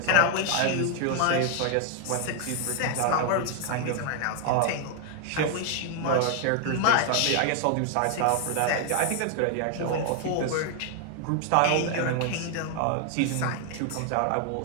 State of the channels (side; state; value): both; different; correlation 0.00